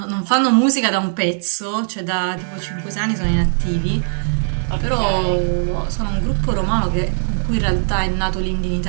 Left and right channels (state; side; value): silent; left; 66 dB below the other